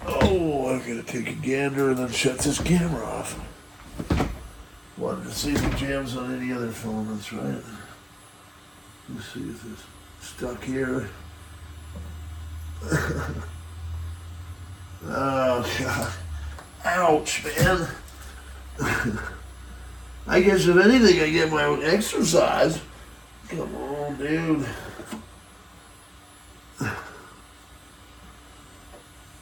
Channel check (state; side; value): identical; both; correlation 1.00